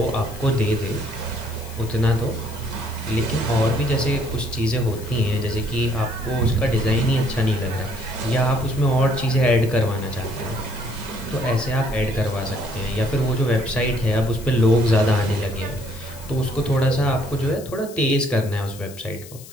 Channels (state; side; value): noise; left; hiss, 18 dB below the sound